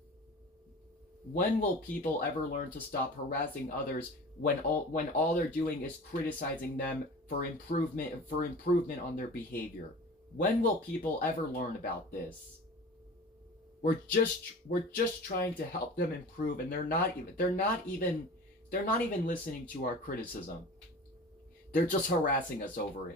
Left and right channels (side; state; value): both; normal; correlation 0.38